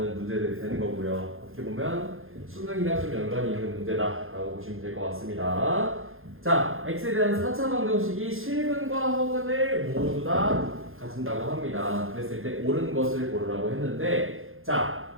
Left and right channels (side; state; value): left; late; 0.60 ms